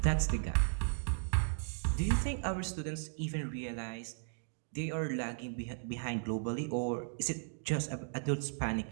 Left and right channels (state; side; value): silent; left; digital silence